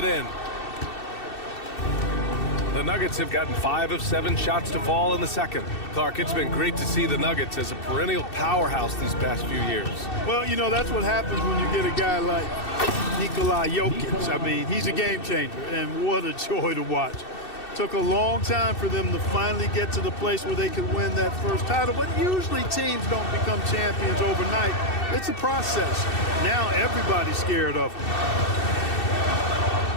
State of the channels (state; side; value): late; right; 2.7 ms